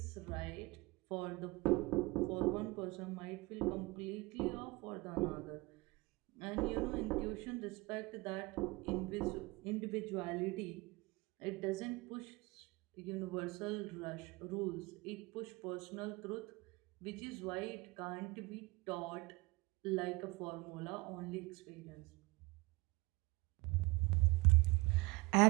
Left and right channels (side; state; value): left; quieter; 23.9 dB